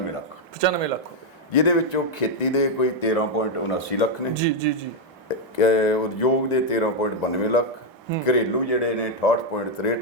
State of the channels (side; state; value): both; normal; correlation 0.01